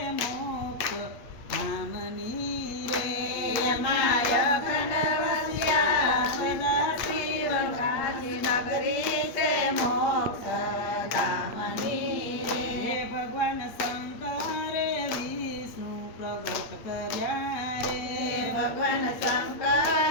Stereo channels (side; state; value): right; late; 8.4 ms